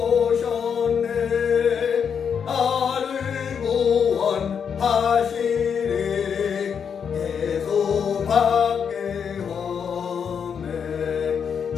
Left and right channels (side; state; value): right; quieter; 7.1 dB